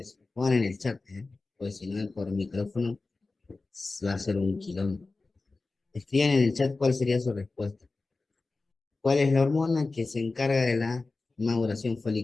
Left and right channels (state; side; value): quieter; right; 3.6 dB